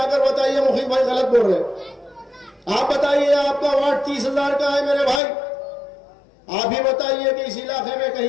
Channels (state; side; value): drops out; right; at 5.2 s